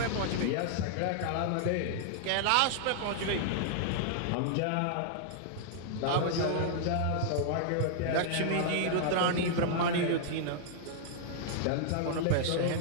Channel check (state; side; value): different; both; correlation -0.01